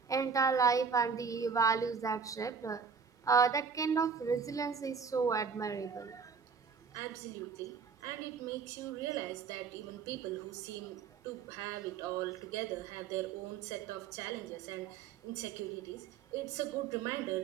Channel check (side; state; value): left; quieter; 5.9 dB